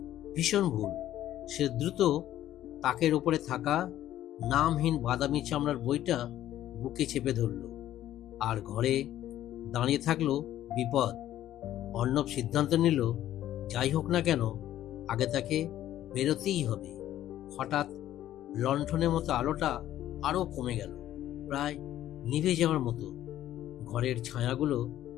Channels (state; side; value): quieter; right; 12.7 dB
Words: ভীষণ ভুল। সে দ্রুত তাকের ওপরে থাকা নামহীন বাদামি চামড়ার বইটা বুকে চেপে ধরল, আর ঘরে দাঁড়িয়ে থাকলো বিপদ। অর্ণব সিদ্ধান্ত নিল, যাই হোক না কেন আগে তাকে বেরোতেই হবে। হঠাৎ লণ্ঠনের মতো আলোটা আরো কমে গেল, প্রায় নিভে যাওয়ার মতো। ঘরের ছায়াগুলো